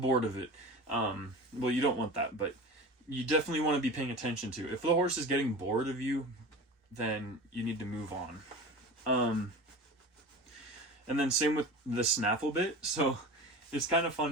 of it. Well, you don't want that, but you definitely want to be paying attention to it. If the horse is getting bored of you, then you need to move on. And then same with the snaffle bit. So it's kind of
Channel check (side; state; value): both; normal; correlation 0.33